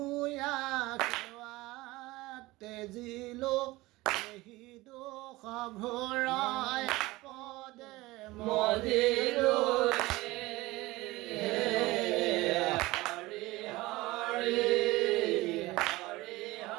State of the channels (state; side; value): quieter; left; 20.0 dB